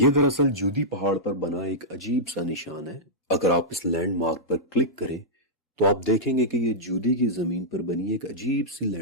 دراصل جودی پہاڑ پر بنا ایک عجیب سا نشان ہے. اگر آپ اس لینڈ مارک پر کلک کریں تو آپ دیکھیں گے کہ یہ جودی کی زمین پر بنی ایک عجیب سی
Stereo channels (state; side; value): normal; both; correlation -0.11